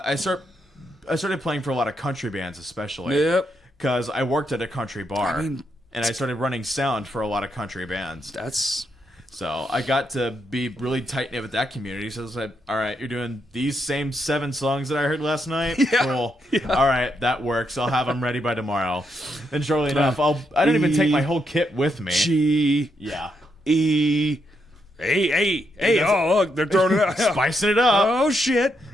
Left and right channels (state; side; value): normal; both; correlation 0.80